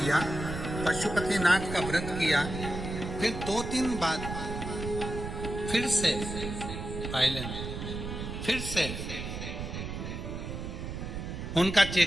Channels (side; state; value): right; noise; rumble, 6 dB below the sound